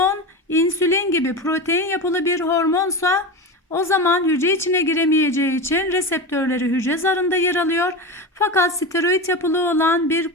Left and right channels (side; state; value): both; normal; correlation 0.22